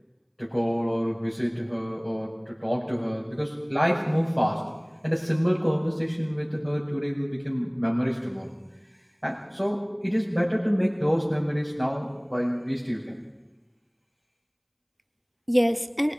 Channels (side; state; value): both; identical; correlation 1.00